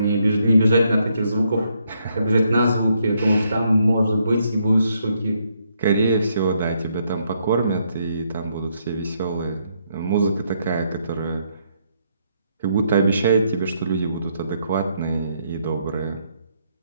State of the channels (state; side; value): inverted; both; correlation -0.75